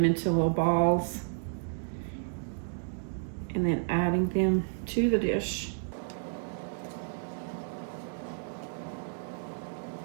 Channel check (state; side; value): silent; left; digital silence